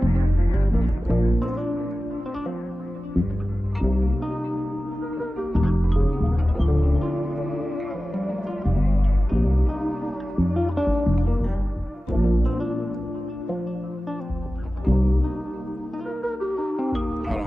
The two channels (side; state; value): both; normal; correlation 0.95